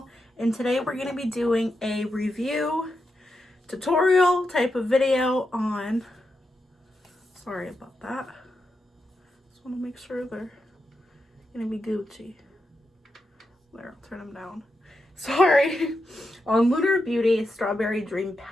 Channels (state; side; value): normal; both; correlation 0.86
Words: and today we're going to be doing a review tutorial type of video on, sorry about that, just want to make sure they're going to be Gucci. There, I'll turn them down. Sorry. On Lunar Beauty Strawberry Dream